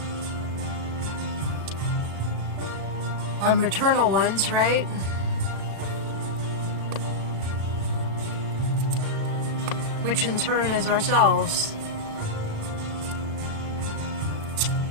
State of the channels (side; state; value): left; late; 36 ms